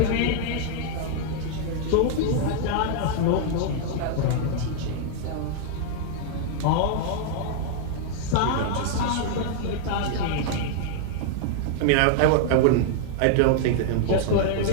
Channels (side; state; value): both; different; correlation 0.00